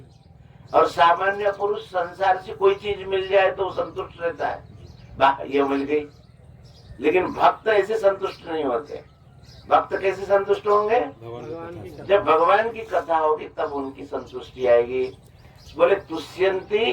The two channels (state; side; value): identical; both; correlation 1.00